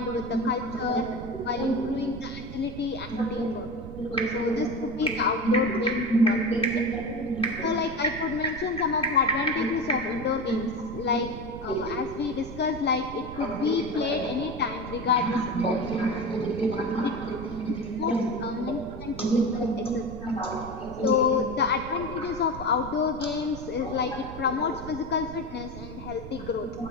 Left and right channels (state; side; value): noise; right; rumble, 12 dB below the sound